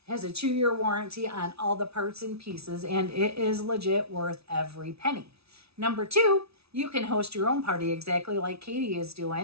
It has a 2-year warranty on all the parts and pieces, and it is legit worth every penny. Number 2, you can host your own party exactly like Katie is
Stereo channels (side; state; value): left; late; 0.78 ms